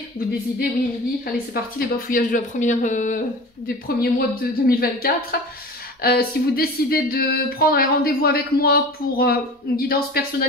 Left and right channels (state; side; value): normal; both; correlation 0.36